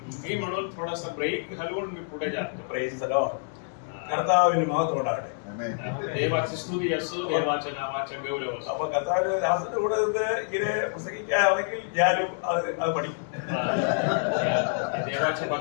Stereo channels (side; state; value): right; silent; digital silence